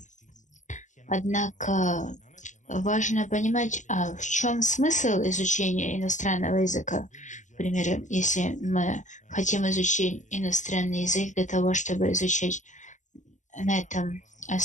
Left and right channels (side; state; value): right; late; 0.36 ms